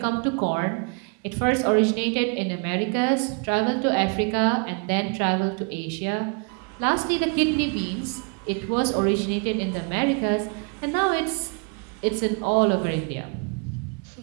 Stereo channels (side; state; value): left; quieter; 36.9 dB